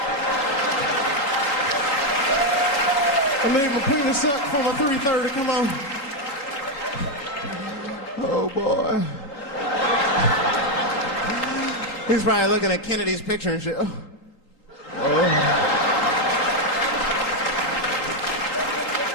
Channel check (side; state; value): right; late; 3.7 ms